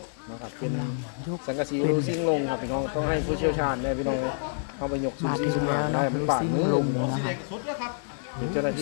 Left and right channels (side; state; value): right; silent; 60 dB below the other